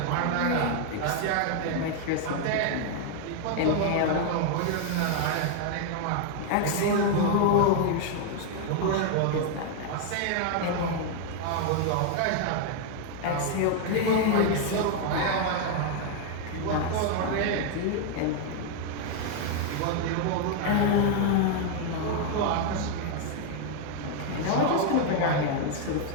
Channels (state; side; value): different; both; correlation 0.00